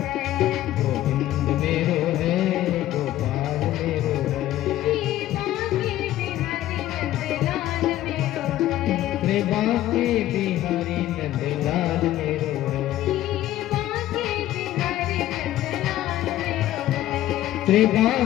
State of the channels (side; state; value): right; quieter; 13.9 dB